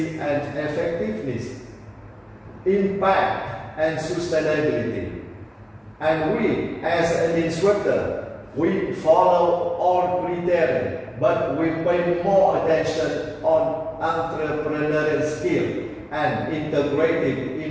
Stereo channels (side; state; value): both; identical; correlation 1.00